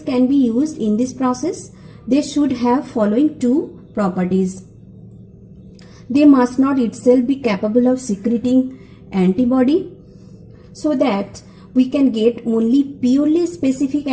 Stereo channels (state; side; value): identical; both; correlation 1.00